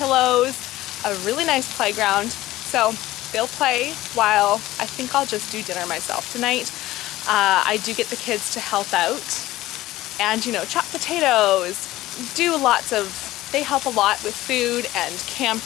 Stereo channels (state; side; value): quieter; right; 16.4 dB